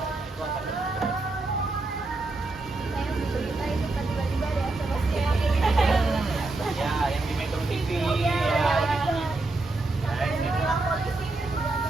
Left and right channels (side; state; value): left; quieter; 3.1 dB